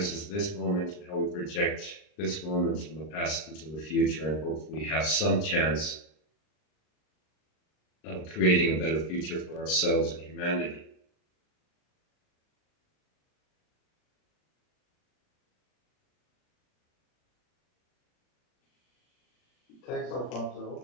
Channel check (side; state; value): right; late; 39 ms